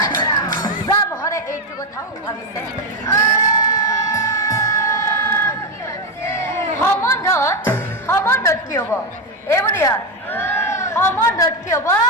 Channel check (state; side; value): normal; both; correlation 0.09